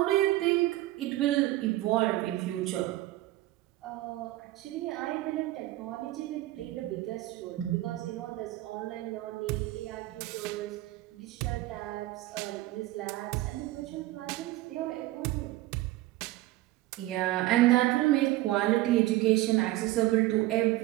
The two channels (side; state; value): left; quieter; 17.0 dB